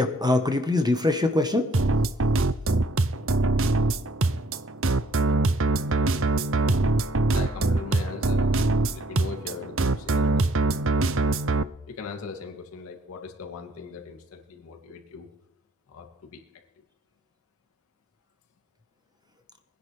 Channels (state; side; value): normal; both; correlation 0.65